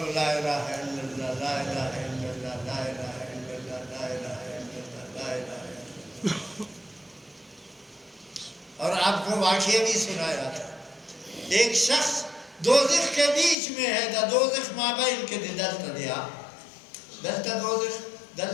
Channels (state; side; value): drops out; right; at 13.6 s